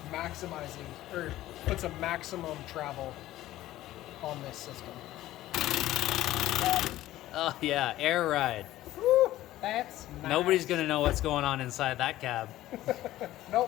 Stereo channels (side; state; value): right; quieter; 15.0 dB